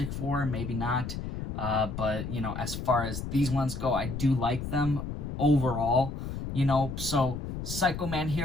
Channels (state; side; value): noise; left; rumble, 6 dB below the sound